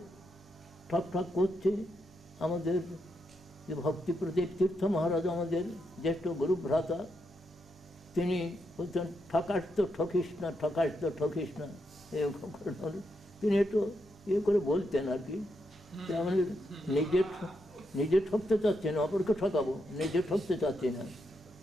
ঠক ঠক করছে। আমাদের যে ভক্তি প্রদীপ তীর্থ মহারাজ, আমাদের জ্যেষ্ঠ গুরু ভ্রাতা, তিনি বলছেন ঠকাস তো ঠকিস না, ঠকাস তো ঠকিস না। তিনি একটু করে বলতেন আর কি, আমাদের নিজে ঠকতে চাচ্ছি না, অপরকে ঠকাবো, নিজে ঠকতে চাচ্ছি না।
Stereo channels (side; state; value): both; normal; correlation 0.82